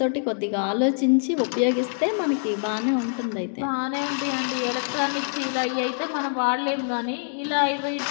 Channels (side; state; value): right; silent; digital silence